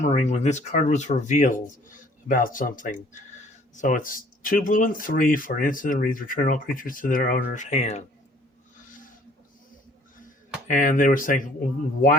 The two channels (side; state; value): both; normal; correlation 0.56